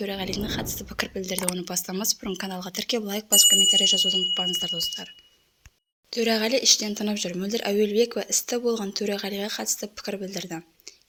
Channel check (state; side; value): identical; both; correlation 1.00